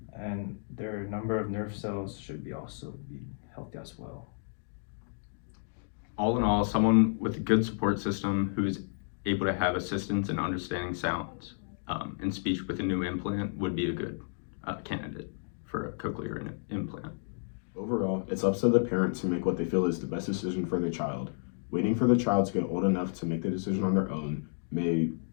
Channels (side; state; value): right; silent; digital silence